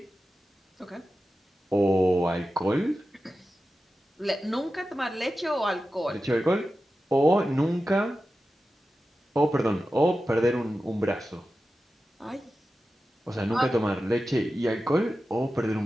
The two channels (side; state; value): both; normal; correlation 0.93